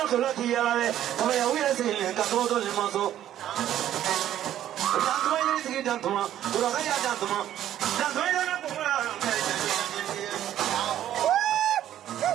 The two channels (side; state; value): left; quieter; 11.8 dB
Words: koloti yale, kama ya uya sile katoto limaso. Dantuma yiri sigi dantuma, uraka ya dantuma, dantuma yana kumura.